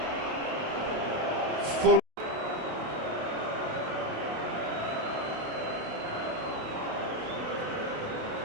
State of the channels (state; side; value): late; left; 28 ms